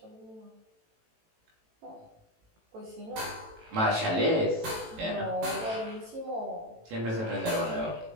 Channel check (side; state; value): left; late; 18 ms